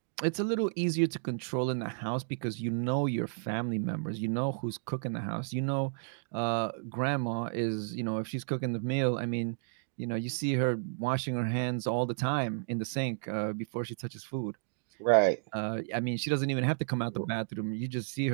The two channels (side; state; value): left; silent; digital silence